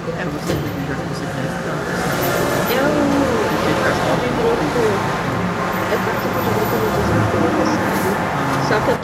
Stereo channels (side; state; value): both; identical; correlation 1.00